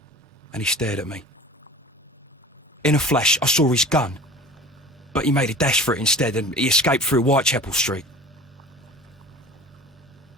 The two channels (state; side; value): normal; both; correlation 0.40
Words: and he stared at me. In a flash, I saw his gun, but he made a dash for it instead, and he escaped through Whitechapel Street.